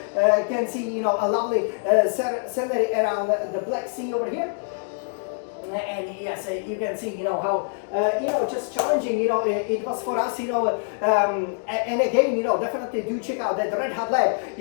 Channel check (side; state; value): right; silent; digital silence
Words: can see, a lovely scenery around the Black Sea over here. And yes, you can see, how, just challenging, it was for us, and again, definitely do check out that Red Hot Lab,